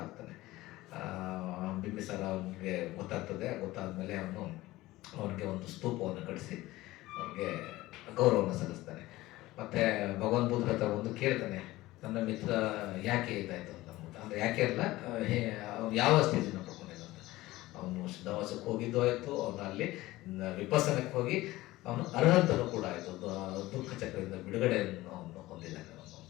ಆಗ್ತಾನೆ. ಬಿಂಬಿಸಾರ ಅವನಿಗೆ ಗೊತ್ತಾದ್ಮೇಲೆ ಅವನಿಗೆ ಒಂದು ಸ್ತೂಪವನ್ನು ಕಟ್ಟಿಸಿ ಅವನಿಗೆ ಗೌರವವನ್ನು ಸಲ್ಲಿಸ್ತಾನೆ. ಮತ್ತು ಭಗವಾನ್ ಬುದ್ಧ ಹತ್ರ ಒಂದು ಕೇಳ್ತಾನೆ, ನನ್ನ ಮಿತ್ರ ಯಾಕೆ ಇದಾಯಿತು ಅಂತ ಅಂದ್ಬಿಟ್ಟು. ಅಂದರೆ ಯಾಕೆ ಅಲ್ಲ, ಅವ್ನು ಯಾವ ಸ್ಥಿತಿನ ಪಡ್ಕೊಂಡಿದ್ದ ಅಂತ. ಅವನು ಶುದ್ಧಾವಾಸಕ್ಕೆ ಹೋಗಿದ್ದು ಆಯಿತು, ಅವನು ಅಲ್ಲಿ ವಿಪಸ್ಸನಕ್ಕೆ ಹೋಗಿ ಅವನು ಅರ್ಹಂತನೂ ಕೂಡ ಆಯಿತು, ದುಃಖ ಚಕ್ರದಿಂದ ಬಿಡುಗಡೆಯನ್ನು ಅವನು ಹೊಂದಿದ್ದಾನೆ ಅವನು ಅಂತ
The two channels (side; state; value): right; quieter; 18.0 dB